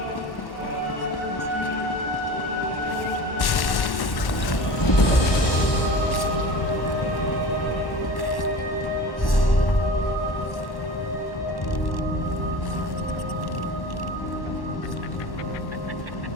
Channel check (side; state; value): right; late; 1.1 ms